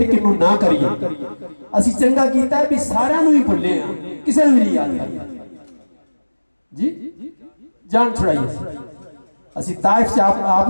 किनू ना करिए, असी चंगा कीता है भी सारियां नू ही भुले हां, किसी नू नहीं याद करते जी। जान छुड़ाइए। असी ताइफ से आप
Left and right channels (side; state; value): both; inverted; correlation -1.00